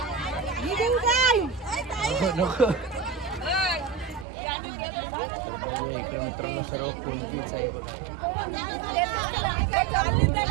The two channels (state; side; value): drops out; left; at 4.2 s